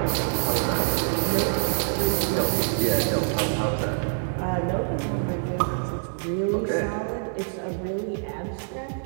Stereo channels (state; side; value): silent; left; digital silence